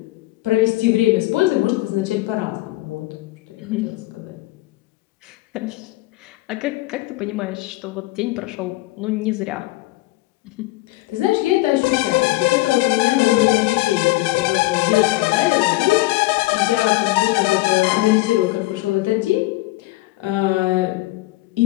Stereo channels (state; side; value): quieter; right; 19.4 dB